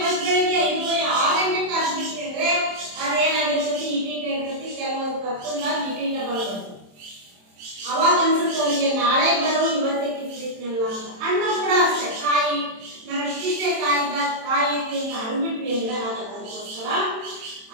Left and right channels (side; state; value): left; late; 27 ms